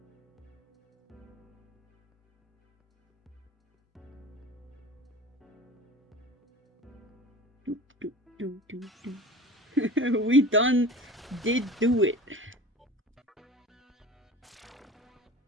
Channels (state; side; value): normal; both; correlation 0.37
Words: We did do it.